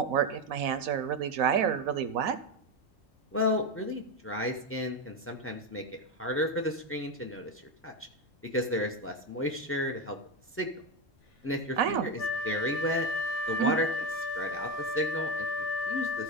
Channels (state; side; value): normal; both; correlation 0.13